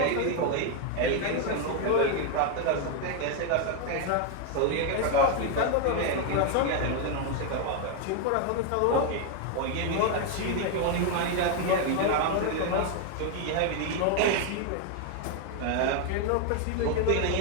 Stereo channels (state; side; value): different; both; correlation 0.01